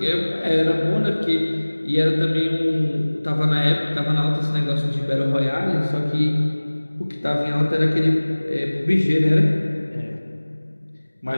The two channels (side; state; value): both; inverted; correlation -1.00